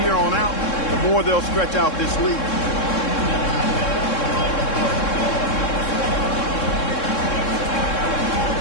here on out, the more they'll stretch out this lead.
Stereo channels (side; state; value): right; late; 3.7 ms